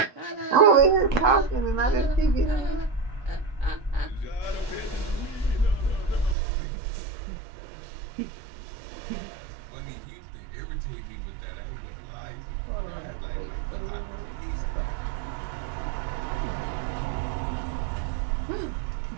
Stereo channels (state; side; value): drops out; left; at 6.4 s